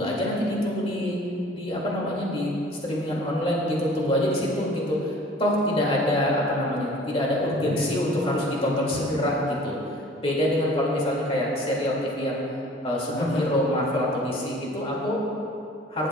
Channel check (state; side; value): normal; both; correlation 0.49